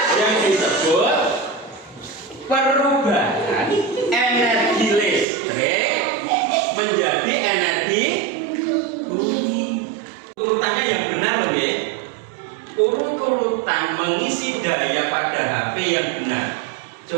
yang disebut perubahan energi listrik menjadi energi bumi. Urutannya yang benar loh ya. Urut-urutan mengisi daya pada HP yang benar.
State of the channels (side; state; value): left; drops out; at 5.2 s